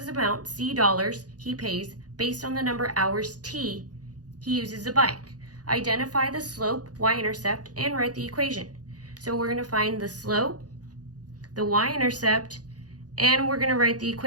the amount, C dollars, he pays based on the number of hours T he uses the bike. Identify the slope, y-intercept, and write the equation. So we're going to find the slope, the y-intercept, and we're going to write the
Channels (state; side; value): late; left; 0.68 ms